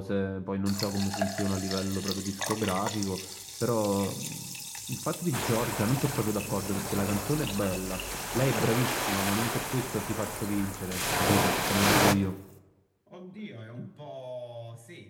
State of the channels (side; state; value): both; identical; correlation 1.00